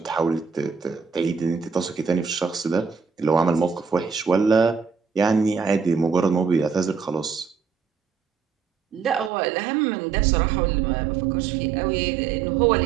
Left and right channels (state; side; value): drops out; left; at 9.3 s